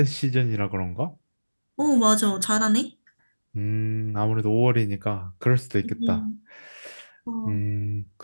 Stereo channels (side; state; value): both; inverted; correlation -1.00